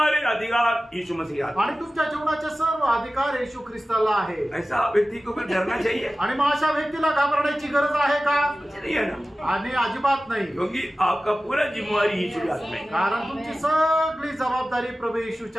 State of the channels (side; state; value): both; normal; correlation 0.96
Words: अधिकार यीशु मसीह आता है। आणि तुमच्या जीवनाचे सर्व अधिकार येशू ख्रिस्ताला आहे। ऐसा व्यक्ति को फिर डरना चाहिए? आणि मग अशा व्यक्तीला घाबरण्याची गरज आहे का? नहीं है ना, आणि अजिबात नाही, क्योंकि आपका पूरा जिम्मेवारी यीशु के हाथ में है। कारण तुमची सगळी जबाबदारी प्रभू